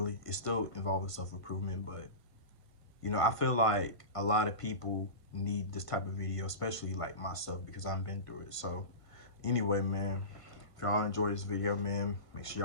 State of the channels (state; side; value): late; right; 1.5 ms